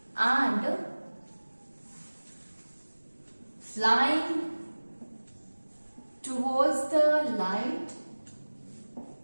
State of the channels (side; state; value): both; inverted; correlation -1.00